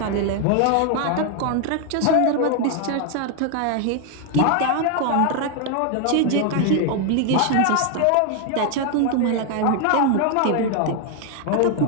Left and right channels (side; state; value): both; different; correlation 0.01